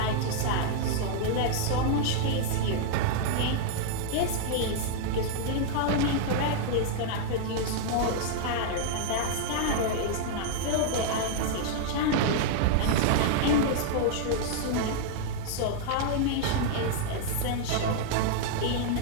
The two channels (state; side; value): different; both; correlation -0.01